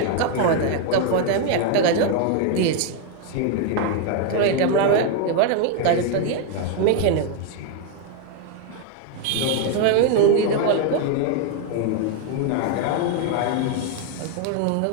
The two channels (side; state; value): both; different; correlation 0.01